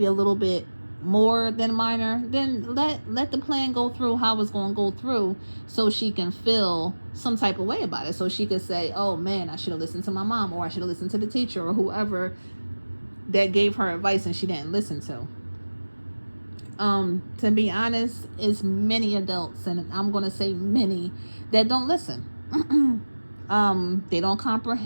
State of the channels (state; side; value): inverted; both; correlation -1.00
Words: a little bit more than minor, then let the plan go through how it's going to go through so she can feel some type of way about it. So she could say, oh man, I should have listened to my mom, or I should have listened to the teacher or whoever that gave her advice and she didn't listen to. To be honest, it's many adults, and I'm going to say many, that don't listen. They don't